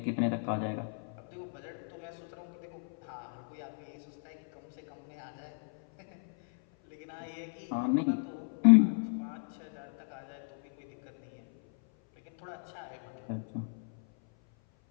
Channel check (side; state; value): right; silent; 55 dB below the other